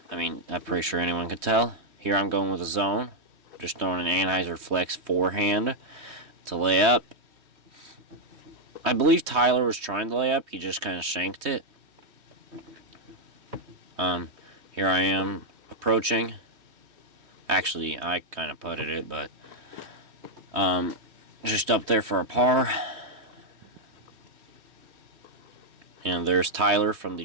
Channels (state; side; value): late; left; 3.2 ms